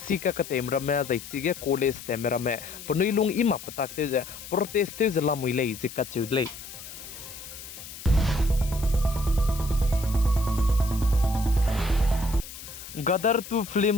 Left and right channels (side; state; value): left; noise; hiss, 13 dB below the sound